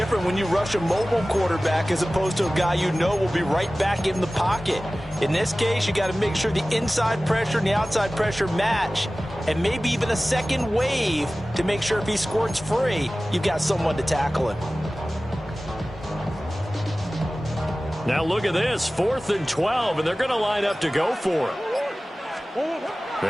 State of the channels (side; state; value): both; normal; correlation 0.97